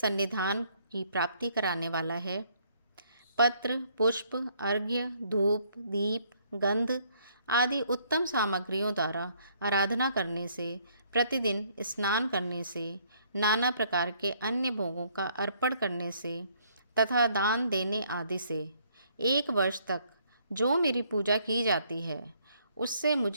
की प्राप्ति कराने वाला है। पत्र, पुष्प, अर्घ्य, धूप, दीप, गंध आदि उत्तम सामग्रियों द्वारा आराधना करने से, प्रतिदिन स्नान करने से, नाना प्रकार के अन्य भोगों का अर्पण करने से तथा दान देने आदि से 1 वर्ष तक जो मेरी पूजा की जाती है, उससे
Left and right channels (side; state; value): both; inverted; correlation -0.66